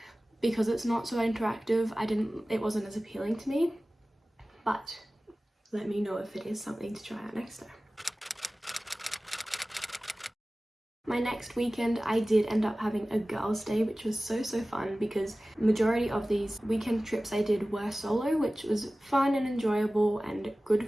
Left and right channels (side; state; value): both; normal; correlation 0.97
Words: because it's not so interactive, it wasn't as appealing to me, but let me know if it is something to try out next time. My next weekend I did end up having a girls' day, which was so fun, because majority of these weekend trips I did were solo, which was fun and enjoyable and